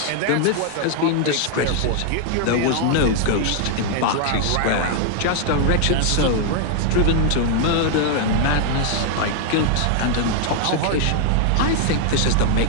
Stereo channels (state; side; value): different; both; correlation 0.00